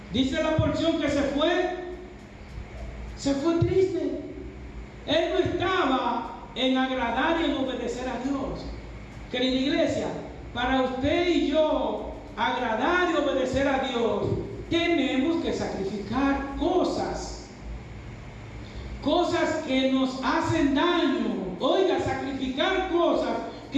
Dice la porción que se fue triste. Él no estaba en agradar y en obedecer a Dios. Querida iglesia, para usted y yo agradar y obedecer a Dios, tenemos que sacrificar cosas que nos hacen daño. Oiga, sacrificar cosas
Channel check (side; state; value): both; identical; correlation 1.00